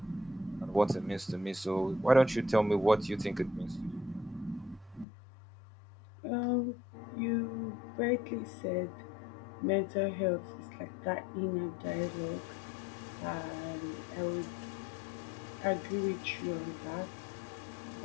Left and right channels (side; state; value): right; drops out; at 5.1 s